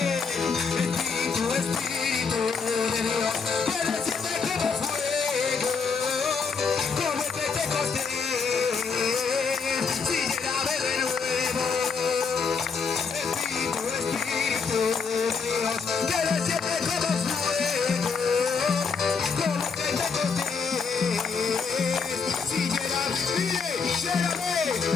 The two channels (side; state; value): right; quieter; 5.4 dB